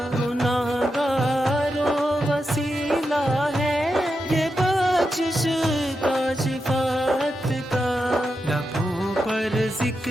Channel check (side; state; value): both; normal; correlation 0.87